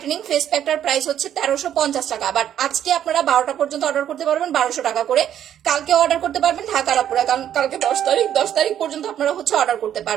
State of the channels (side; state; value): left; quieter; 10.4 dB